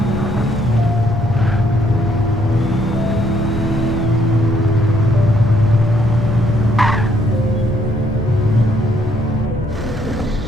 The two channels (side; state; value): both; normal; correlation 0.69